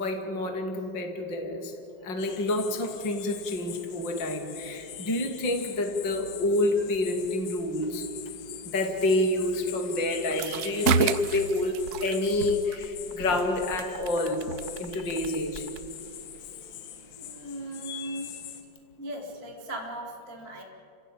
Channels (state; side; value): late; right; 5.6 ms